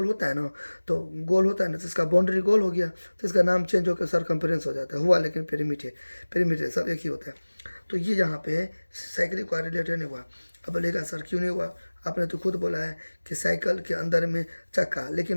होता है ना, तो गोल होता है ना, तो इसका बाउंड्री गोल हो गया, तो इसका नाम चेंज होकर सरकमफ्रेंस हो जाता है, हुआ लेकिन पेरीमीटर, पेरीमीटर सब एक ही होता है। तो ये यहाँ पे साइकिल का रिलेटेड नहीं हुआ। अब बोलेगा सर क्यों नहीं हुआ, आपने तो खुद बोला है कि साइकिल के अंदर में चक्का। लेकिन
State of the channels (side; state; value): both; inverted; correlation -1.00